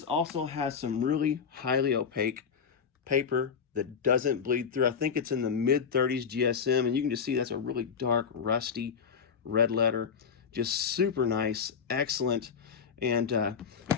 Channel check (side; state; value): right; quieter; 6.5 dB